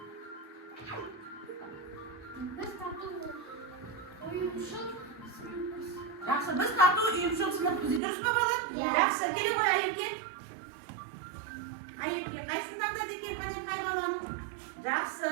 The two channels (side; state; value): left; drops out; at 8.0 s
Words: Biz tatlı uyumsuz Yaxshi, biz tatlı uyumsuz sinfmiz. Durustmi bolalar? Yaxshi, kelib qo'y Ayibga. Ayibga qaysidan da degan qanday hayvonlarni? Yaxshi.